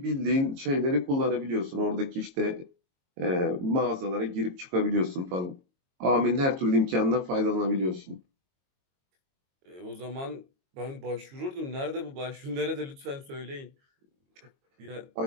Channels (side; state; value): left; late; 22 ms